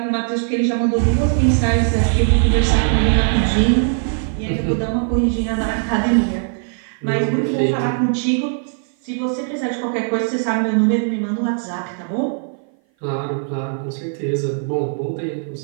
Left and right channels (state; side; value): silent; left; 57 dB below the other